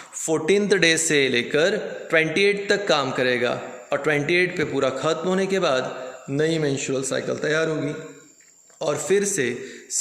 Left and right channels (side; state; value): both; identical; correlation 1.00